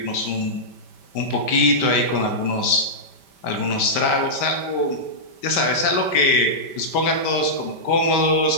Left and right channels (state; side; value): late; right; 5.1 ms